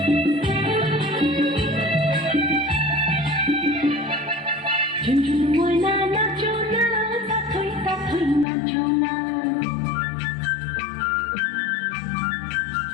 ময়না নাচো না, তাথই তাথই নাচো না।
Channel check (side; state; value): right; drops out; at 8.5 s